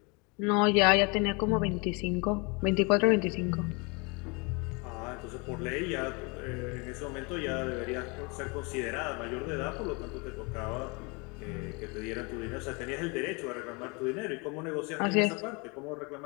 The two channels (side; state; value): right; quieter; 30.5 dB